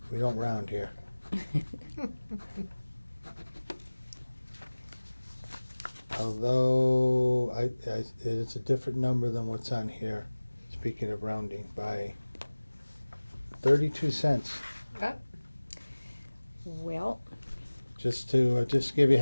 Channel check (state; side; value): inverted; both; correlation -1.00